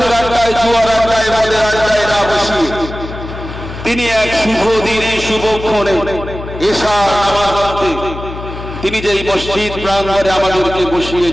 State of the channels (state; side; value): noise; left; hum, 10 dB below the sound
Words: আড্ডায়, জুয়ার আড্ডায়, মদের আড্ডায় না বসিয়ে তিনি এক শুভ দিনে শুভক্ষণে এশার নামাজ পড়তে তিনি যেই মসজিদ প্রাঙ্গণে আমাদেরকে বসিয়ে